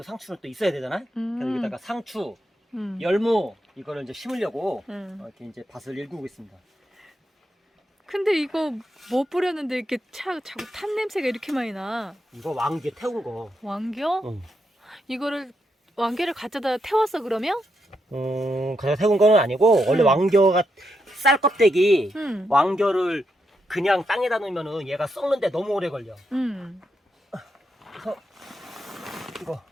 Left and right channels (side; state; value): both; normal; correlation 0.82